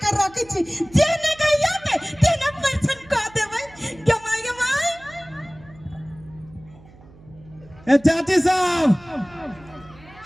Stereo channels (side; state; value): right; noise; hum, 24 dB below the sound